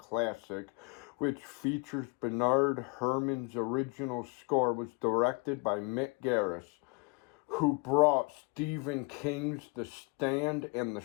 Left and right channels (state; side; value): quieter; right; 29.0 dB